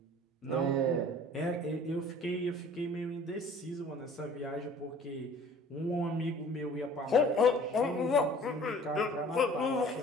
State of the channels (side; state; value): both; normal; correlation 0.49